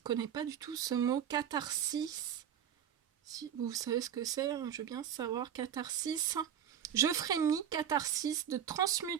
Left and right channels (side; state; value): left; quieter; 9.2 dB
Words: connais pas du tout ce mot, catharsis. Si vous savez ce que c'est, je veux bien savoir. Catharsis. Je frémis, catharsis de